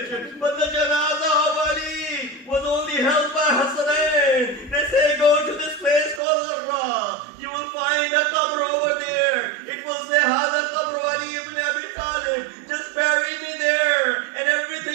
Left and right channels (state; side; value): drops out; left; at 6.2 s